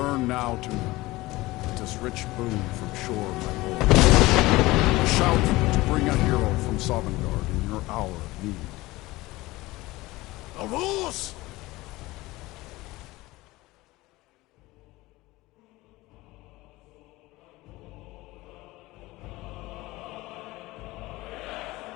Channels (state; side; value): quieter; right; 19.7 dB